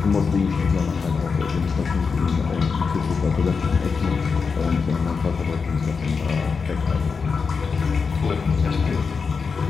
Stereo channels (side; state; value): right; quieter; 5.2 dB